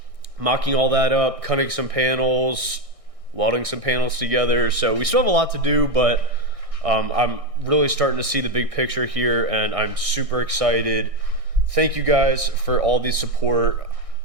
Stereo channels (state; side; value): late; left; 1.6 ms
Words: mocking all that up, cutting some panels, welding some panels together. So we still have a lot to do, but I'm really starting to see the big picture here, and I'm super excited. Thank you guys for all the support.